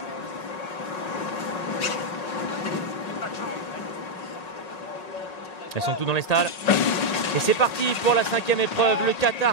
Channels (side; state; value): right; late; 1.8 ms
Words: Elles sont toutes dans les stalles. Et c'est parti pour la 5e épreuve, le